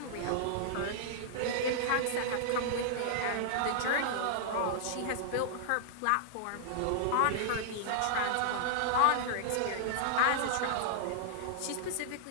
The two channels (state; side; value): different; both; correlation -0.01